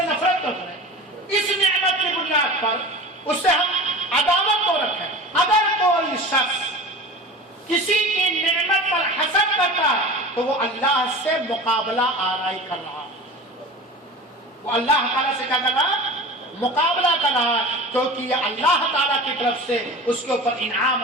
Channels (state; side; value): normal; both; correlation 0.35